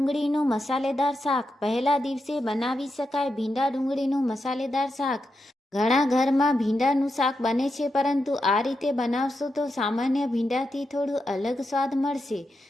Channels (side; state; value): both; normal; correlation 0.86